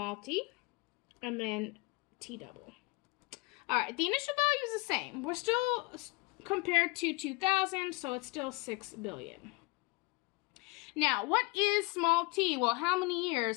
t, and then t double. All right, the initial value is the same. We're still compared to 2000, so it's still 6 billion. Now, what is small t? Well, how many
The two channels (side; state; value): right; quieter; 25.8 dB